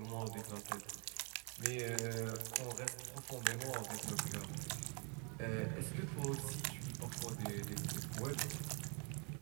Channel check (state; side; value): quieter; left; 35.8 dB